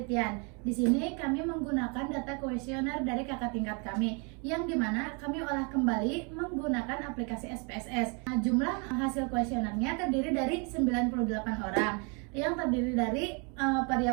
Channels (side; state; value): left; quieter; 34.5 dB